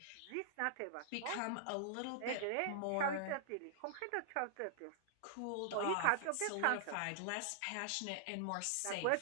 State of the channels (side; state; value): both; different; correlation -0.01